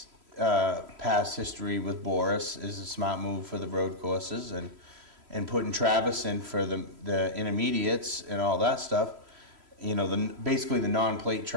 past history with Boris is a smart move for the road courses, and putting Travis in for the intermediates and all that stuff, you know, basically the non-plate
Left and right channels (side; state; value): left; late; 3.0 ms